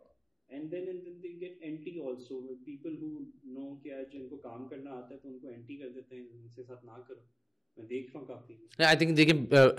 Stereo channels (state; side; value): identical; both; correlation 1.00